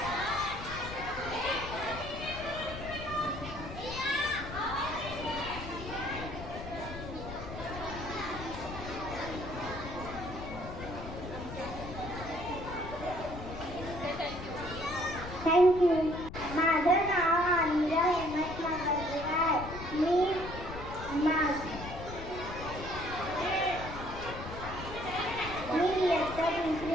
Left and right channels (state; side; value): noise; left; rumble, 10 dB below the sound